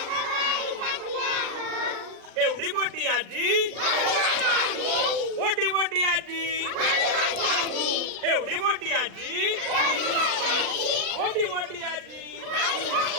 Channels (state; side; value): late; left; 39 ms